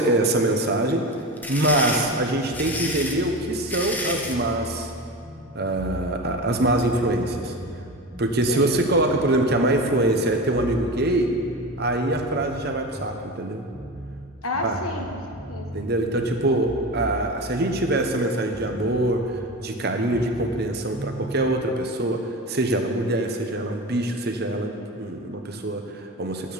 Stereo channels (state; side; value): normal; both; correlation 0.27